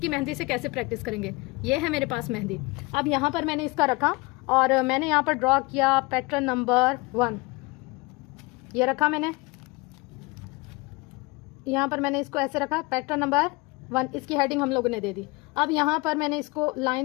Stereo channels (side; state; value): right; quieter; 25.7 dB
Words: मेहंदी से कैसे प्रैक्टिस करेंगे। ये है मेरे पास मेहंदी। अब यहाँ पर मैंने इसका रखा और मैंने यहाँ पर ड्रॉ किया पैटर्न नंबर 1, ये रखा मैंने, यहाँ पर मैंने इसको ऐसे रखा, पैटर्न नंबर 1, इसकी हेडिंग हम लोगों ने दे दी। अब यहाँ पर मैंने इसको